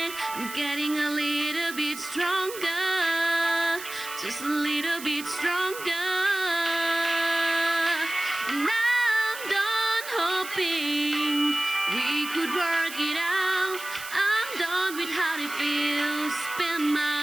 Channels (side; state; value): right; noise; hiss, 12 dB below the sound